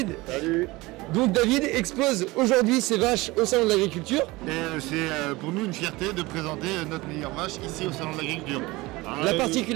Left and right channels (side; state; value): left; quieter; 21.3 dB